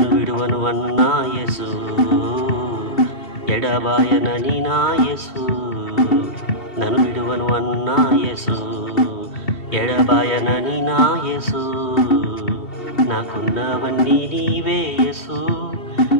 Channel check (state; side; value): late; right; 2.7 ms